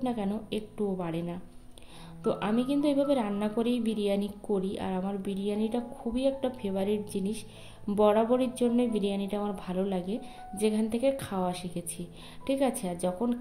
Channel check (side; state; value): both; identical; correlation 1.00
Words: না কেন একটুও বাড়ে না। তো আমি কিন্তু এভাবে রান্না করেই বিরিয়ানি করি, আর আমার বিরিয়ানিটা খুবই একটা ফেভারিট জিনিস, বরাবরের জন্যই বিরিয়ানিটা আমার ভালো লাগে, যেখান থেকে খাওয়া শিখেছি, ঠিক আছে। আর যখন